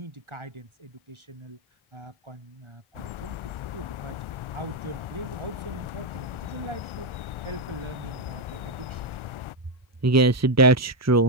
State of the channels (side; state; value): both; normal; correlation 0.04